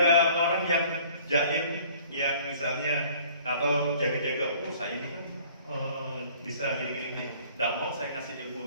orang yang jaim, yang misalnya atau jaga-jaga, saya ini kan bisa gini-gini, nggak mau saya kasih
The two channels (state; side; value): inverted; both; correlation -0.52